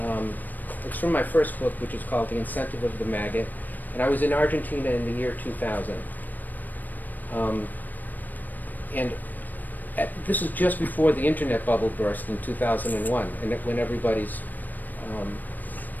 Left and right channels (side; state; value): right; late; 0.087 ms